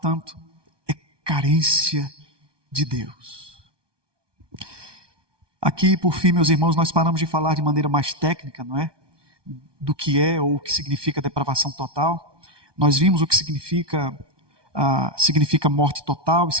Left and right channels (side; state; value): left; late; 1.2 ms